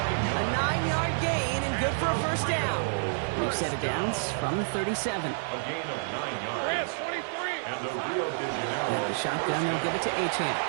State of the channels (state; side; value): silent; left; digital silence